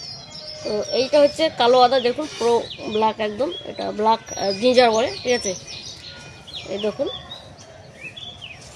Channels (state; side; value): identical; both; correlation 1.00